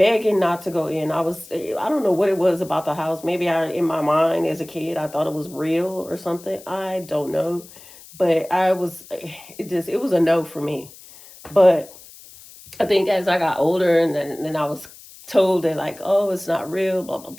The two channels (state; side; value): noise; left; hiss, 20 dB below the sound